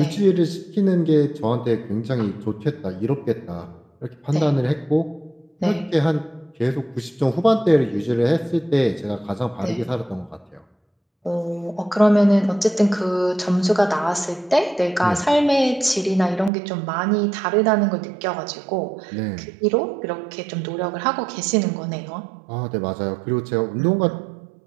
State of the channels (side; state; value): left; drops out; at 16.5 s